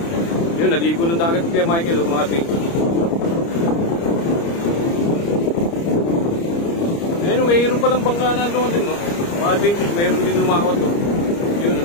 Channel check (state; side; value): late; right; 30 ms